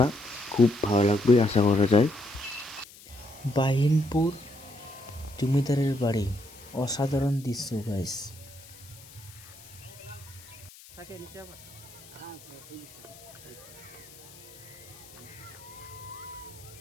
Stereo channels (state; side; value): noise; left; hiss, 20 dB below the sound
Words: খুব ভালো লাগবে আশা করা যায়। বাহিনপুর জমিদারের বাড়ি, অসাধারণ দৃশ্য গাইস।